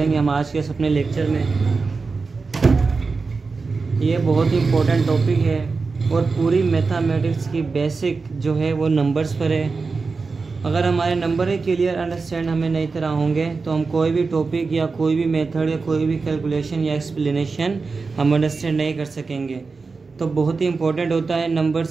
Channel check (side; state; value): left; quieter; 4.4 dB